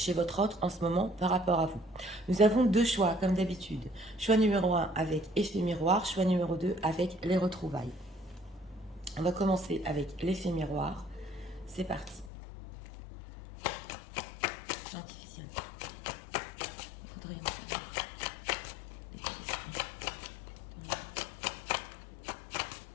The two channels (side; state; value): right; drops out; at 12.3 s